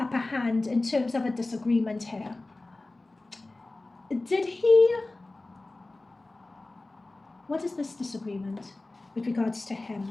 hand in terms of a disagreement here. Did he... What is this disagreement with regards to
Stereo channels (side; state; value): right; quieter; 3.0 dB